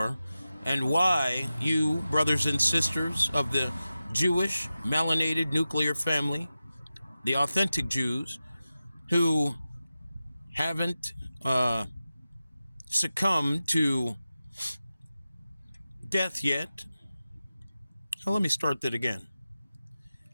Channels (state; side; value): inverted; both; correlation -0.93